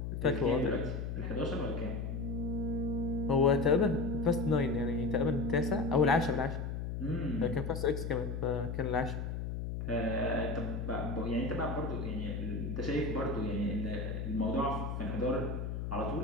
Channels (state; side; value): noise; left; hum, 4 dB below the sound